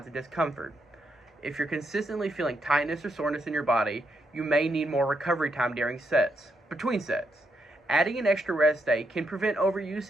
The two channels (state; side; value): normal; both; correlation 0.79